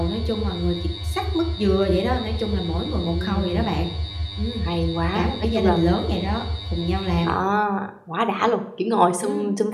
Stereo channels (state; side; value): identical; both; correlation 1.00